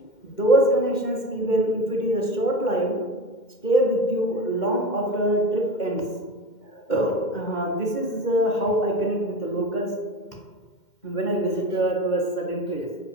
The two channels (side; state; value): right; late; 2.1 ms